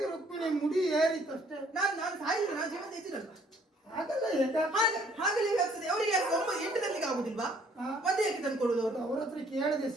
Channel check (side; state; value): both; normal; correlation 0.61